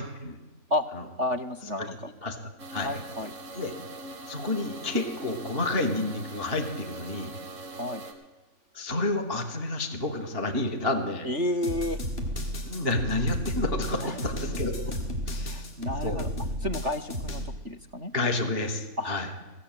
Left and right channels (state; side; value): late; left; 3.5 ms